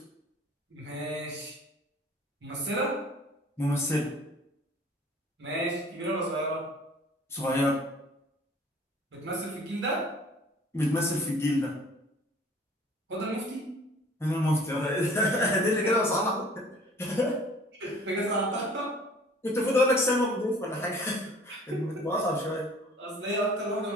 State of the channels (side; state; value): both; normal; correlation 0.51